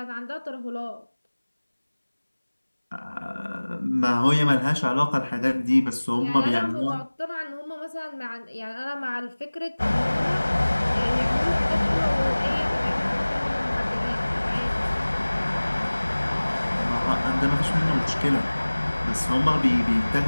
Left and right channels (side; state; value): both; inverted; correlation -1.00